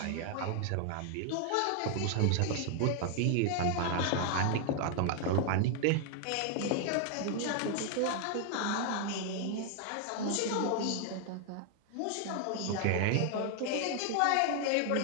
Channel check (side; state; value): both; different; correlation 0.00